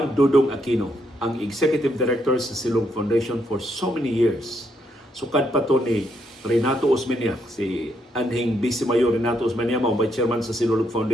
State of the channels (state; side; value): normal; both; correlation 0.76